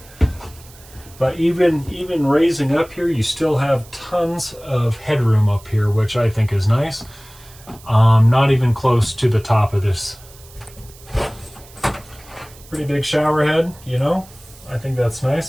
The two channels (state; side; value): noise; right; hiss, 23 dB below the sound